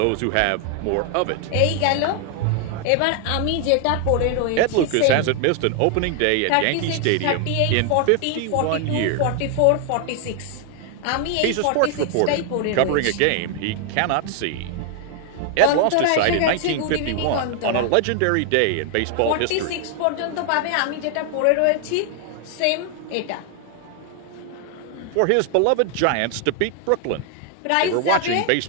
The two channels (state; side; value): different; both; correlation 0.00